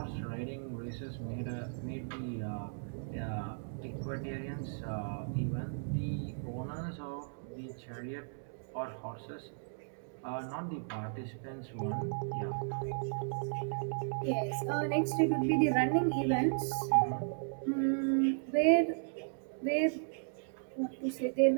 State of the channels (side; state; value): left; silent; digital silence